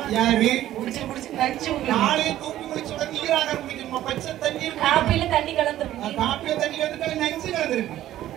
யாரு? குடிச்சு நடிச்சு காலையே தூக்கி குடிச்சு உடனே நீராக குடிக்கணுமா? பச்சை தண்ணி இருக்கு. காப்பில தண்ணி கலந்துருக்கு. காப்பில தண்ணி கலந்துட்டு நஞ்சு கலந்துருக்கு.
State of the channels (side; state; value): left; quieter; 13.3 dB